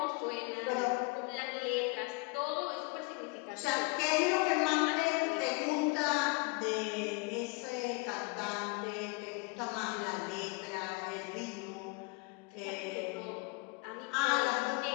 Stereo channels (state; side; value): quieter; right; 28.1 dB